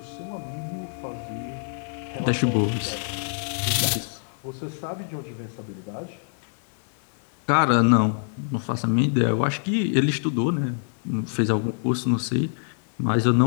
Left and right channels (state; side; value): silent; right; 62 dB below the other